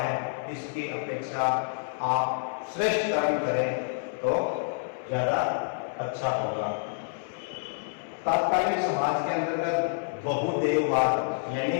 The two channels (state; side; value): silent; right; 59 dB below the other